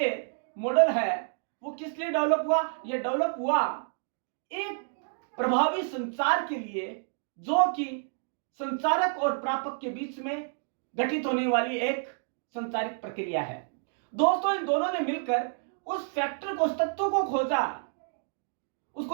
मॉडल है वो किस लिए डेवलप हुआ? ये डेवलप हुआ एक प्रभावी संचार के लिए, जो कि संचारक और प्रापक के बीच में गठित होने वाली एक संचारित प्रक्रिया है। दोस्तों इन दोनों ने मिलकर उस फैक्टर को, उस तत्व को खोजा,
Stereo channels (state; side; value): silent; left; digital silence